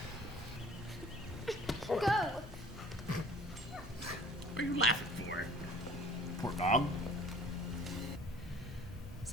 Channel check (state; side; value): normal; both; correlation 0.50